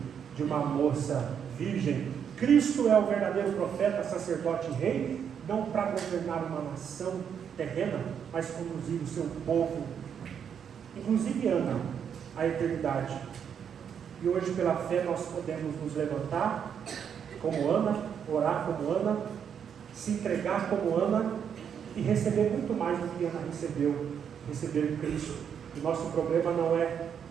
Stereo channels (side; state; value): left; quieter; 7.9 dB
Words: de uma moça virgem. Cristo é o verdadeiro profeta, sacerdote e rei, não para governar uma nação terrena, mas conduzir o seu povo, inclusive Ana, à eternidade. E hoje, pela fé, nós podemos nos levantar como Ana, orar como Ana, se entregar como Ana e receber muito mais do que Ana recebeu, receber Cristo. O nosso problema não é